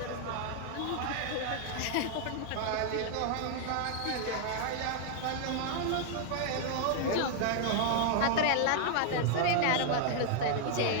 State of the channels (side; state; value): both; different; correlation 0.00